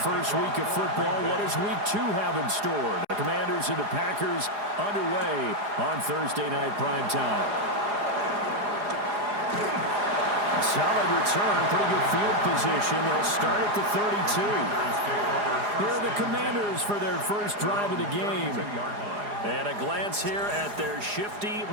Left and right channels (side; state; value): left; late; 4.9 ms